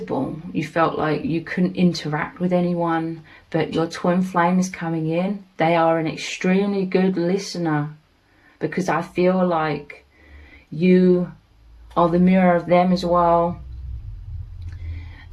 You felt like you couldn't interact with anyone, but your twin flame is coming in. They are an extremely good listener, because I feel like you are the mirror of them as well.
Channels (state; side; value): identical; both; correlation 1.00